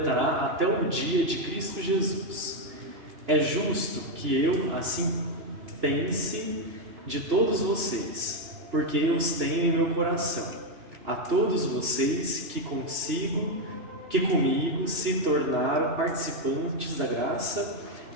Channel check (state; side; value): late; left; 2.9 ms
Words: até o dia de Cristo Jesus. É justo que eu assim pense de todos vocês, porque eu os tenho em meu coração. A todos vocês que comigo se tornaram participantes da graça